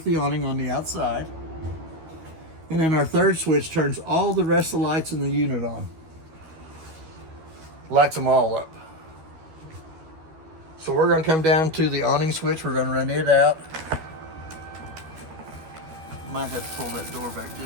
the awning on the outside. And then our third switch turns all the rest of the lights in the unit on. Lights them all up. So we're going to come down to the awning switch. We're going to run it out. Might have to pull that door back,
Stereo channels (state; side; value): late; left; 12 ms